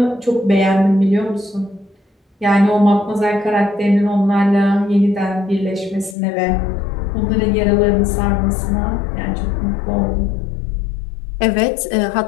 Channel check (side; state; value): right; drops out; at 6.2 s